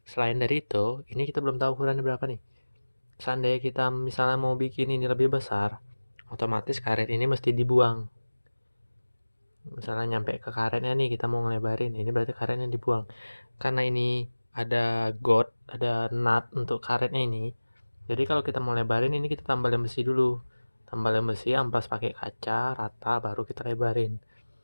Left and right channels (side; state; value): both; inverted; correlation -1.00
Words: selain dari itu, ini kita belum tahu ukurannya berapa nih. Seandainya kita misalnya mau bikin ini lebih besar, otomatis karet ini mesti dibuang. Misalnya nyampe ke karetnya nih, kita mau ngelebarin, ini berarti karetnya dibuang. Karena ini ada ada nut untuk karetnya ini. Jadi kalau kita mau lebarin ini kita tambah lem besi dulu. Tambah lem besi, amplas pakai kaca rata baru kita lebarin.